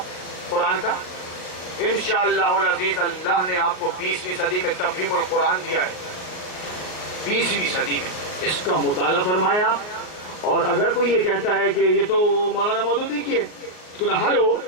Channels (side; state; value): right; late; 38 ms